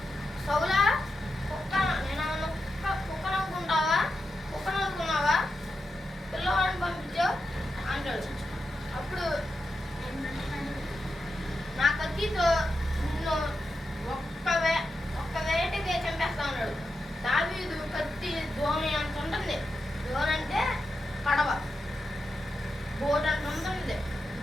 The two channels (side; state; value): both; normal; correlation 0.88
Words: సౌలా నేను కుక్క నవ్వుకున్నావా పిల్లవాడిని పంపించావు అంటాడు. అప్పుడు నా కత్తితో నిన్ను ఒక్క వేటకే చంపేస్తా ఉన్నాడు. దావీదు కత్తి దోణి అంత ఉంటుంది. దోణి అంటే కడవ, బోట్ అంత ఉంటుంది,